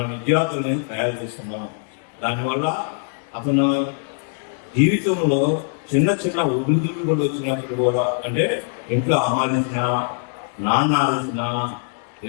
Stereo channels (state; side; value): silent; right; 63 dB below the other